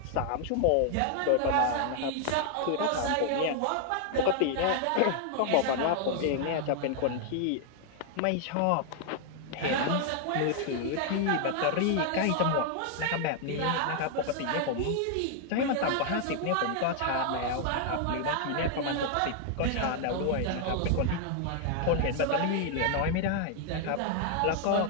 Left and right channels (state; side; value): different; both; correlation 0.00